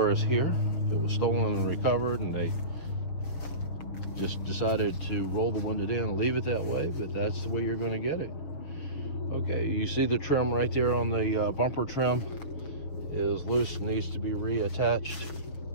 is here. If it was stolen and recovered and they just decided to roll the window down and leave it that way, but that's the way you're going to get it. Okay, you see the trim right there on the bumper trim is loose and needs to be reattached.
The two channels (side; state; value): right; late; 6.6 ms